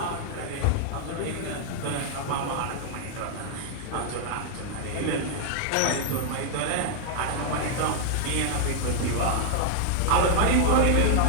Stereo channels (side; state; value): both; different; correlation -0.01